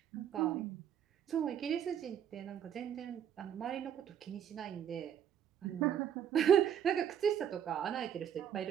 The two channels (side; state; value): left; quieter; 9.1 dB